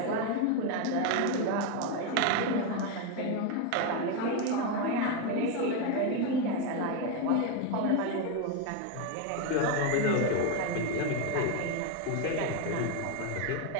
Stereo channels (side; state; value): both; different; correlation 0.02